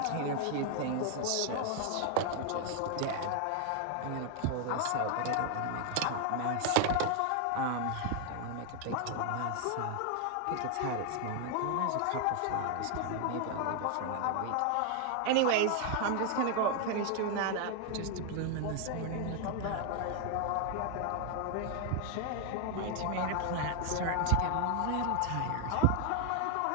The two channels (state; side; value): different; both; correlation 0.00